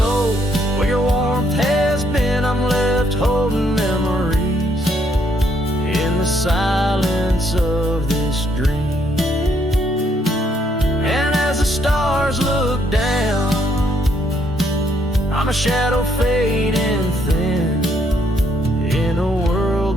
where your warmth has been. I'm left holding memories in the silence of this dream. And as the stars look down, I'm a shadow fading thin in a world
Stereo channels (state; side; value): normal; both; correlation 0.71